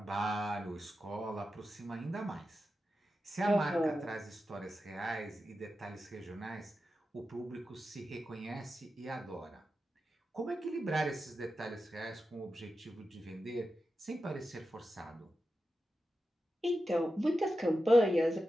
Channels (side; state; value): both; normal; correlation 0.91